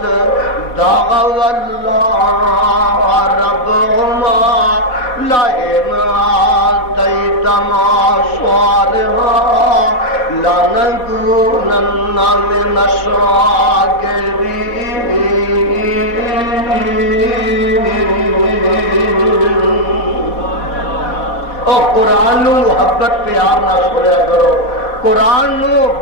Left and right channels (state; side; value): late; right; 4.0 ms